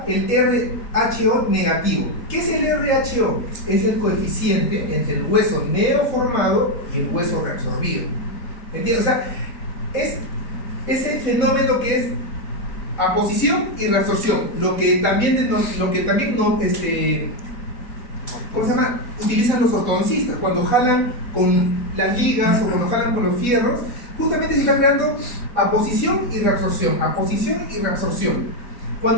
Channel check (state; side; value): late; right; 4.1 ms